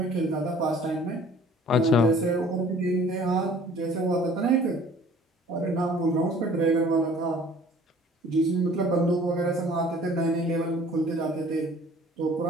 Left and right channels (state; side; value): normal; both; correlation 0.51